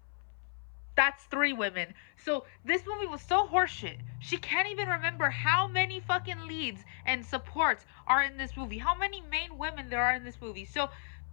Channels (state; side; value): silent; right; 56 dB below the other